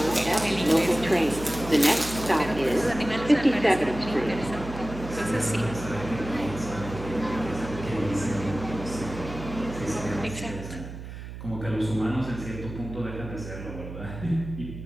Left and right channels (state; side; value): noise; right; hum, 11 dB below the sound